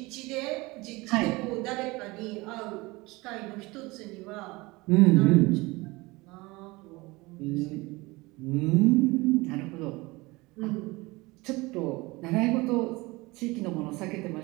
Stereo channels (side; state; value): left; quieter; 22.7 dB